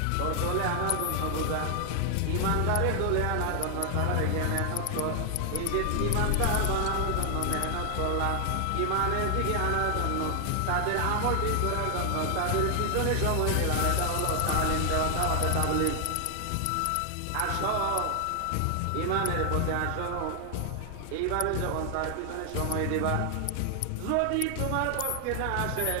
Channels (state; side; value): different; both; correlation 0.00